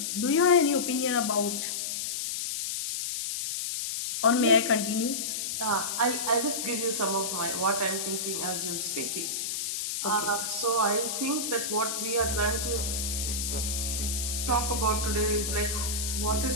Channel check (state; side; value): noise; left; hiss, 2 dB below the sound